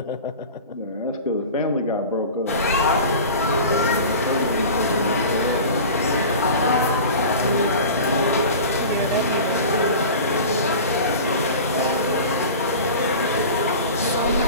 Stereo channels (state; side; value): inverted; both; correlation -0.36